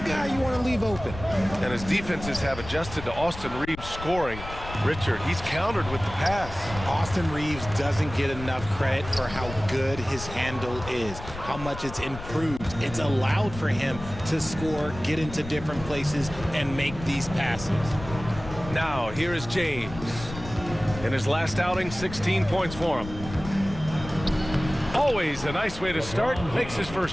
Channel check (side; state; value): left; noise; rumble, 12 dB below the sound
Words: you want to leave open. And his defenses have adjusted to Austin Reeves scoring. Richard, he's countered with the pass. Austin Reeves doesn't get enough credit for how good his handle is, how much it's improved. It's allowed for him to score, get into different places, and make these passes. Now, here is James. In his last outing, 16 points for him. Always a nice way to start. Makes his